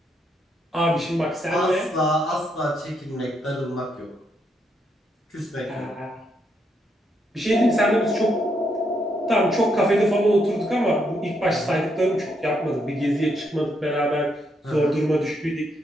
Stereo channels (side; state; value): both; normal; correlation 0.77